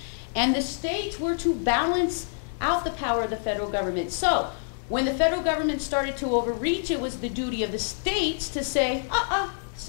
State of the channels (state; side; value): silent; right; digital silence